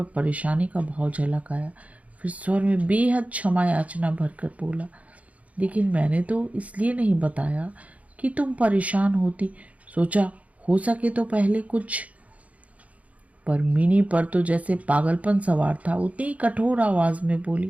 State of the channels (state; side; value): late; left; 0.068 ms